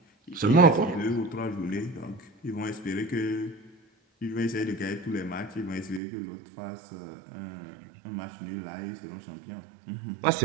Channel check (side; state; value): left; drops out; at 6.0 s